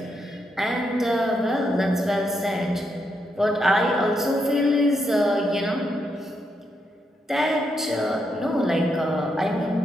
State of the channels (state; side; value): normal; both; correlation 0.80